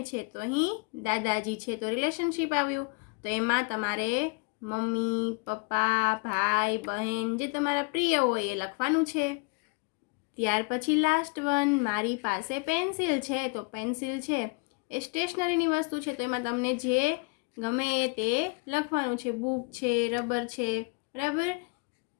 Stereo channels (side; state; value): right; quieter; 31.2 dB